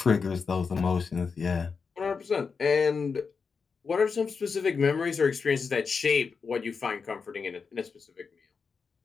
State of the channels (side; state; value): right; quieter; 5.3 dB